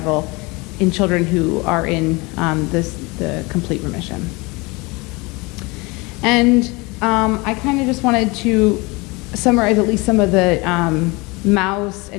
in children who are in the complete remission. And I kind of just wanted to summarize at least some of the mouse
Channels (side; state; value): right; quieter; 25.6 dB